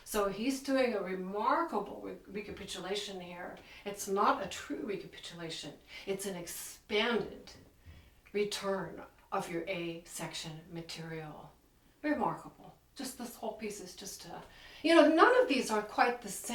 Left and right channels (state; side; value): identical; both; correlation 1.00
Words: So he's doing a remarkable recapitulation here. It's not a true recapitulation. It's an expanded return of your A section material. Remarkable. Just this whole piece is just, none of these are quite the